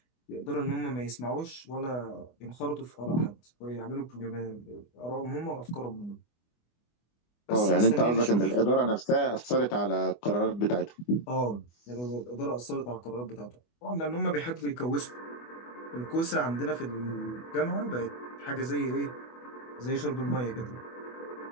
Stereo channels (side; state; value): right; late; 24 ms